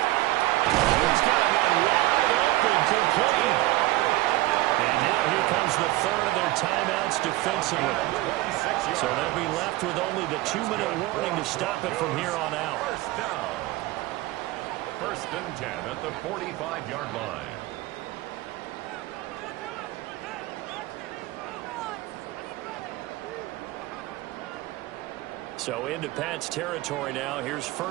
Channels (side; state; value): left; quieter; 18.2 dB